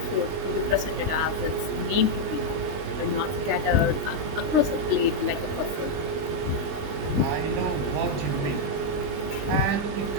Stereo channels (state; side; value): late; left; 20 ms